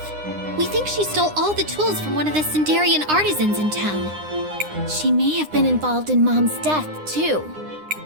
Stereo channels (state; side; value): late; left; 9.8 ms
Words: We think she stole all the tools from one of the Sindarian artisans in town. She may have been involved in Mom's death, too.